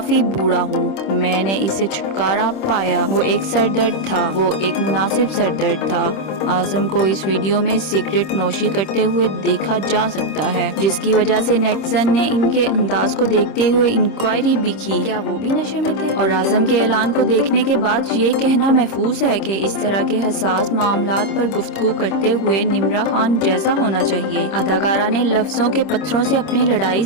बूढ़ा हूँ, मैंने इससे छुटकारा पाया। वो एक सर दर्द था, वो एक मुनासिब सर दर्द था। आजम को इस वीडियो में सिगरेट नोशी करते हुए देखा जा सकता है, जिसकी वजह से नेटिजन ने इनके अंदाज को देखते हुए इंक्वायरी भी की, क्या वो भी नशे में थे। और आजम के ऐलान को देखने के बाद ये कहना महफूज है कि इस तरह के हसास मामलात पर गुफ्तगू करते हुए निम्रा खान जैसा होना चाहिए। अदाकारा ने लफ्जों के पत्थरों से अपनी लड़ाई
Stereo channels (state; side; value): late; right; 26 ms